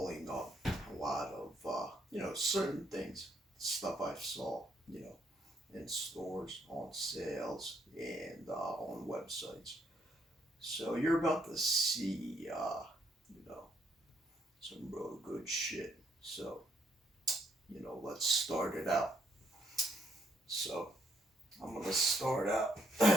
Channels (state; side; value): normal; both; correlation 0.72